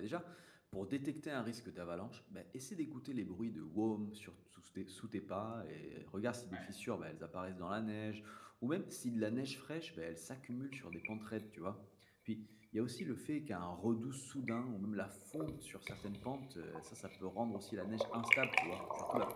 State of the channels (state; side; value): identical; both; correlation 1.00